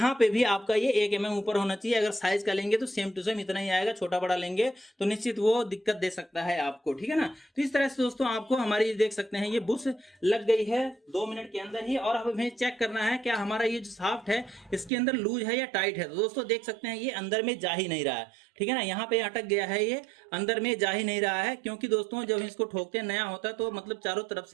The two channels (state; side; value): drops out; left; at 14.9 s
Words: पे भी आपका ये 1 mm ऊपर होना चाहिए। अगर साइज का लेंगे तो सेम टू सेम इतना ही आएगा, छोटा बड़ा लेंगे तो निश्चित वो दिक्कत दे सकता है आपको, ठीक है ना। तो इस तरह से दोस्तों आपको हमारी देख सकते हैं ये बुश लग गई है 2 मिनट के अंदर ही, और अब हमें चेक करना है क्या हमारा ये जो साफ्ट है इसके अंदर लूज है या टाइट है। तो दोस्तों देख सकते हैं ये अंदर में जा ही नहीं रहा है, ठीक है ना, यहाँ पे अटक गया है, ये अंदर में जा ही नहीं रहा है, क्योंकि दोस्तों जब इसको ठोकते हैं नया होता है तो मतलब चारों तरफ